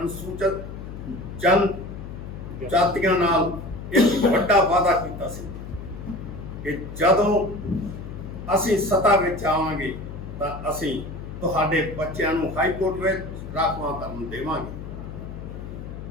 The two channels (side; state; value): left; noise; hum, 10 dB below the sound